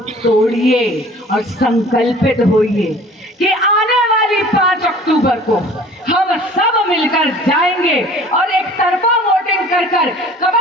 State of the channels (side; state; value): both; normal; correlation 0.48